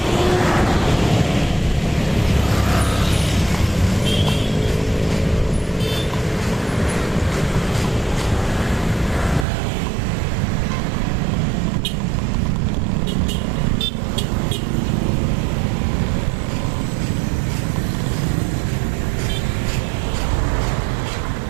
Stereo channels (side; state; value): left; drops out; at 9.5 s